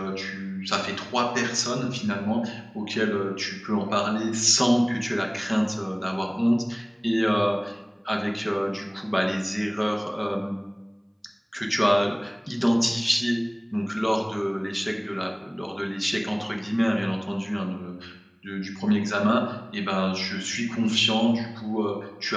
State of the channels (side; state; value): both; identical; correlation 1.00